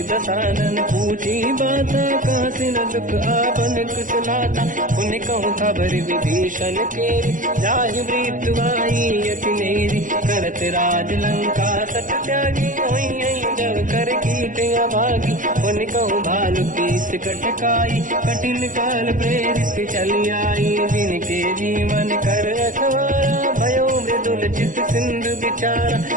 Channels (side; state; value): left; late; 0.38 ms